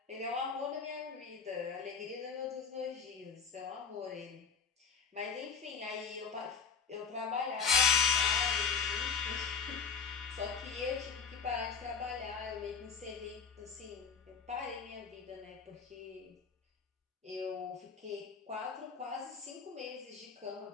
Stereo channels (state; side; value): quieter; right; 6.1 dB